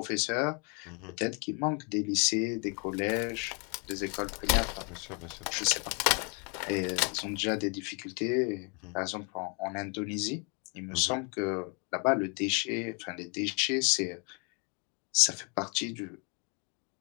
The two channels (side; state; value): right; quieter; 35.5 dB